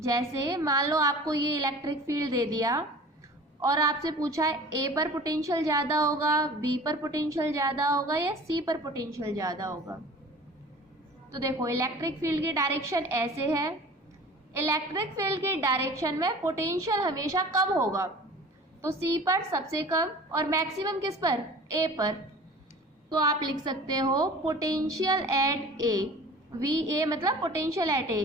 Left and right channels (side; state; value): both; normal; correlation 0.43